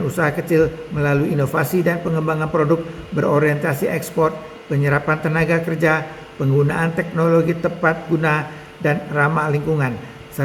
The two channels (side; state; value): both; identical; correlation 1.00